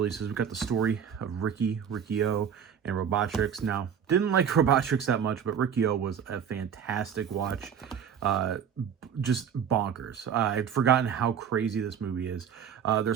We got the story of Riki-Oh, and Robotrix. Now, didn't like Robotrix that much, but Riki-Oh was a fantastic watch. Uh, just bonkers. I'd forgotten how crazy this movie is.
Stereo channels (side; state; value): left; quieter; 7.9 dB